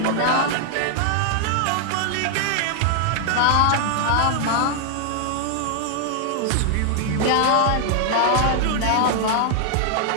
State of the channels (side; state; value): both; different; correlation 0.00